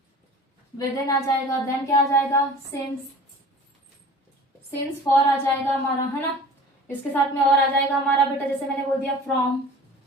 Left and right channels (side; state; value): both; normal; correlation 0.43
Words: विद इन आ जाएगा, देन क्या आ जाएगा सिंस, सिंस फॉर आ जाएगा हमारा, है ना। इसके साथ में और आ जाएगा हमारा बेटा, जैसे मैंने बोल दिया फ्रॉम,